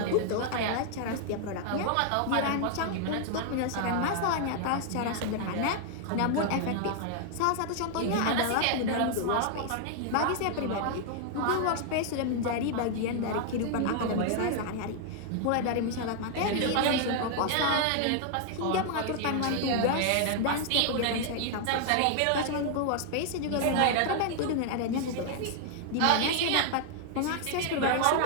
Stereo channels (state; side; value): different; both; correlation 0.00